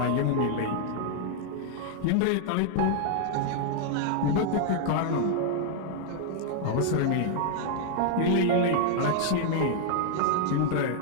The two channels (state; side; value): different; both; correlation 0.00